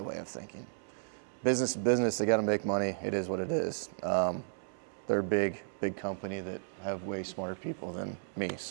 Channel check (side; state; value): left; silent; 55 dB below the other